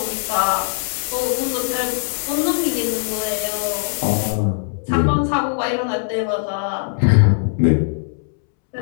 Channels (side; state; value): right; silent; 66 dB below the other